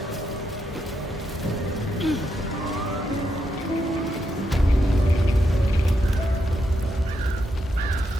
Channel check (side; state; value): both; normal; correlation 0.82